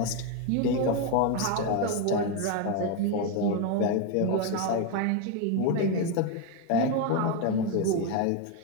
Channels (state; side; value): different; both; correlation 0.02